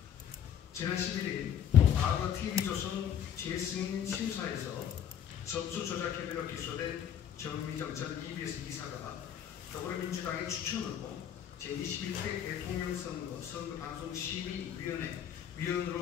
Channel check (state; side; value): quieter; right; 9.1 dB